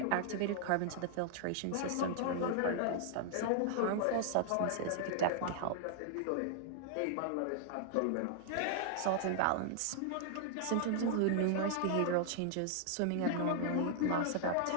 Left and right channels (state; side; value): different; both; correlation 0.00